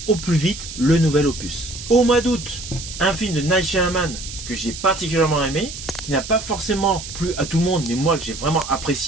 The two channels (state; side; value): noise; right; hiss, 10 dB below the sound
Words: au plus vite le nouvel opus. Au mois d'août, un film de Night Shyamalan que j'ai particulièrement aimé, qui n'a pas forcément plu à tout le monde, mais moi que j'ai vraiment